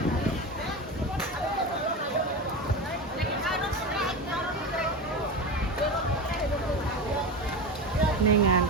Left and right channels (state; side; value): normal; both; correlation 0.23